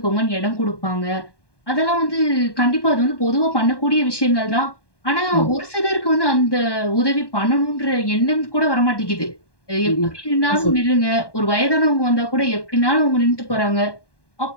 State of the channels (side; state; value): right; late; 1.2 ms